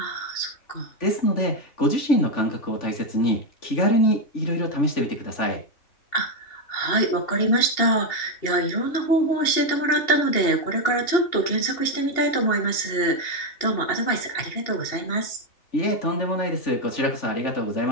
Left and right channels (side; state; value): right; late; 2.8 ms